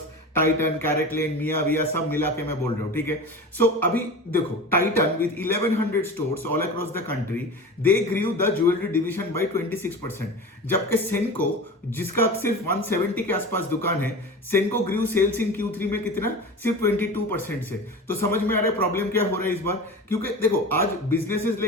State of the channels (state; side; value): normal; both; correlation 0.32